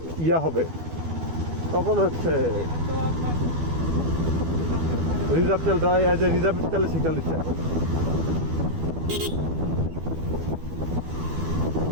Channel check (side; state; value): left; late; 12 ms